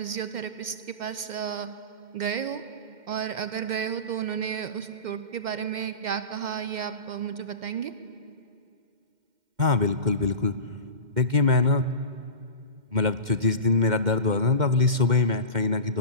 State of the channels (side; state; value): left; late; 2.1 ms